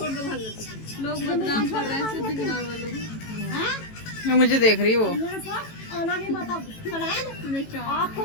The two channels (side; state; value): right; late; 18 ms